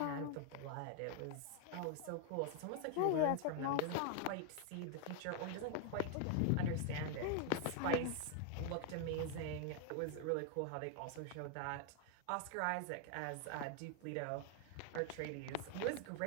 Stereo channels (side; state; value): both; different; correlation 0.00